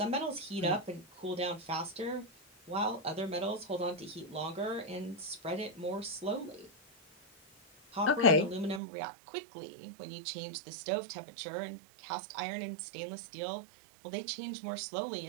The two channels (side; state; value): left; drops out; at 8.8 s